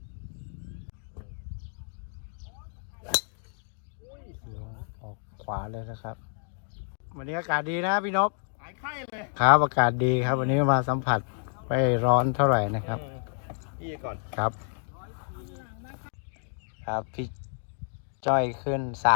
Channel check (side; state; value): right; silent; digital silence